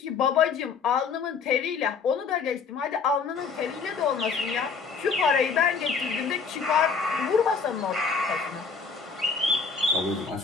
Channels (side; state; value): right; quieter; 5.4 dB